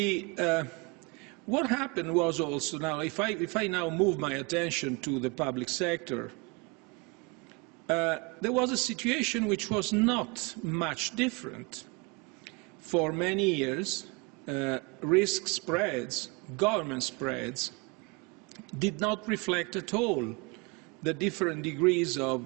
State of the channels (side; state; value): left; quieter; 28.8 dB